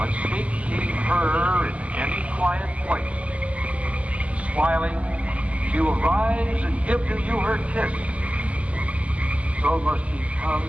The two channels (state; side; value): late; left; 0.066 ms